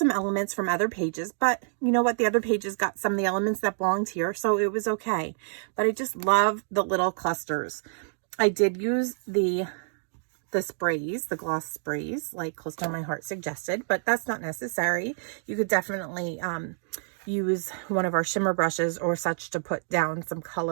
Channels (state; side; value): silent; left; digital silence